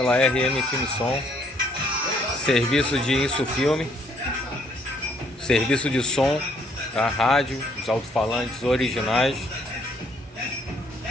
RM Film Som. Serviço de Insufilme, serviço de som, tá? Rádio, os alto-falantes originais,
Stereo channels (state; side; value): normal; both; correlation 0.67